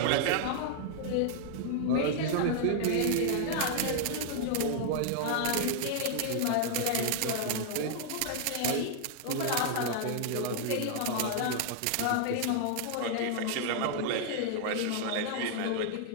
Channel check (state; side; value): different; both; correlation 0.00